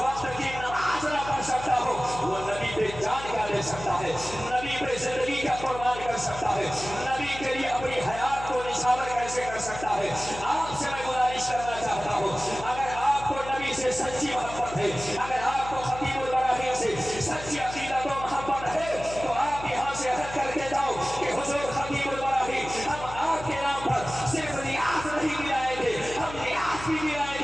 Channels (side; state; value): left; noise; hum, 12 dB below the sound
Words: کی نماز نہ پڑھ سکتا ہو وہ نبی پہ جان کیا دے سکتا ہے، نبی پہ زندگی کا قربان کر سکتا ہے، نبی کے لیے اپنی حیات کو نشاور کیسے کر سکتا ہے۔ آپ سے میں گزارش کرنا چاہتا ہوں اگر آپ کو نبی سے سچی محبت ہے، اگر آپ کو خطیب البراہیم سے سچی عقیدت و محبت ہے تو آپ یہاں سے عہد کر کے جاؤ کہ حضور خطیب البراہیم ہم آپ کے نام پر صرف ریاض نہیں دلائیں گے، ہم ریاض بھی دلائیں